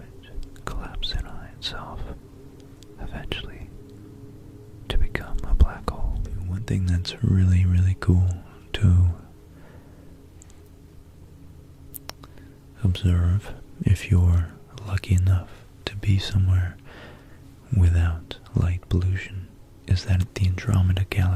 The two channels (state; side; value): identical; both; correlation 1.00